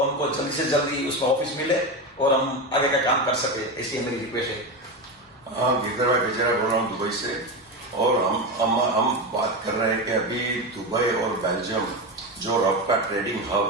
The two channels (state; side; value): normal; both; correlation 0.17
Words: हमको जल्दी से जल्दी उसमें ऑफिस मिले और हम आगे का काम कर सके, ऐसी मेरी रिक्वेस्ट है। हाँ, गिरधर भाई बेचारा बोल रहा हूँ दुबई से, और हम बात कर रहे हैं कि अभी दुबई और बेल्जियम जो रफ का ट्रेडिंग